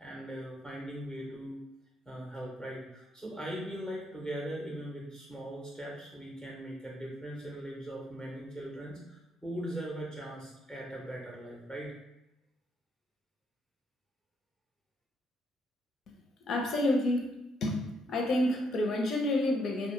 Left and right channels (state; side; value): normal; both; correlation 0.75